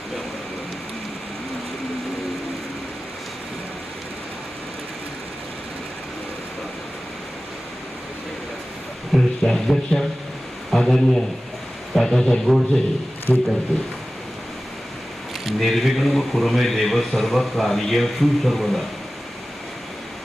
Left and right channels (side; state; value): both; normal; correlation 0.96